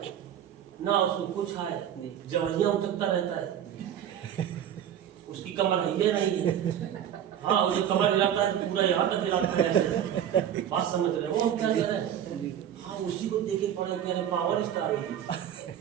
ना उसको कुछ आए, जबरिया उचकता रहता है, उसकी कमर है नहीं है। हाँ, वो जो कमर हिलाता है तो पूरा यहाँ तक हिलाता है ऐसे। बात समझ रहे हो क्या कह रहे हैं? हाँ, उसी को देखे पड़े कि अरे पावर स्टार है।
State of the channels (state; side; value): quieter; left; 9.9 dB